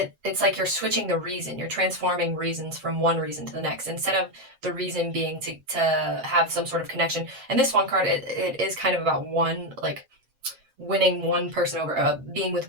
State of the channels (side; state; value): left; late; 7.5 ms